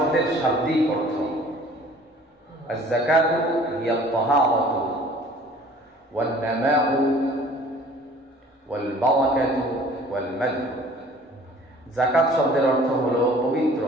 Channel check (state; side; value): normal; both; correlation 0.51